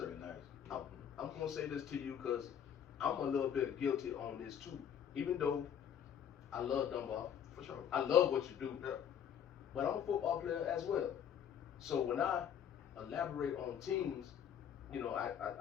nice. I'm going to say this to you because I'm a little bit guilty on this too. Even though I love Dunbar. For sure. I love what you do. Yeah. But I'm a football player as well. So when I elaborate on teams, you know,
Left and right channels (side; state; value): right; quieter; 8.8 dB